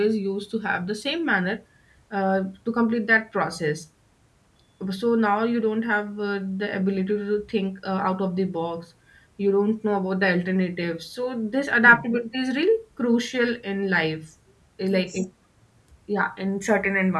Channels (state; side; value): identical; both; correlation 1.00